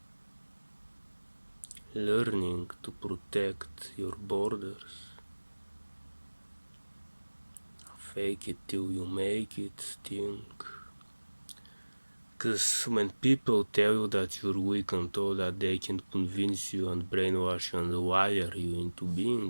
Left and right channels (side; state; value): both; inverted; correlation -1.00